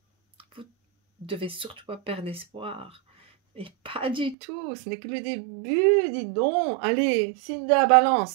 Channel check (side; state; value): left; drops out; at 4.4 s